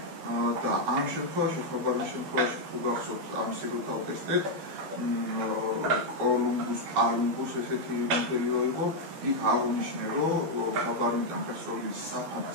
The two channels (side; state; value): left; late; 12 ms